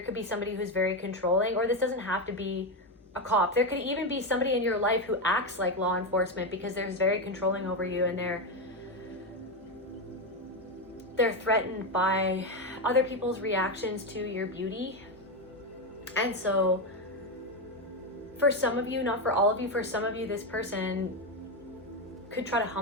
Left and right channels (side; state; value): both; normal; correlation 0.10